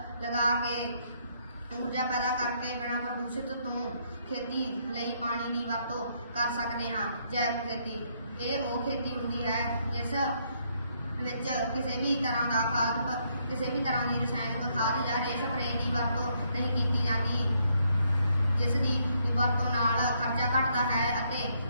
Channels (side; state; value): both; inverted; correlation -0.72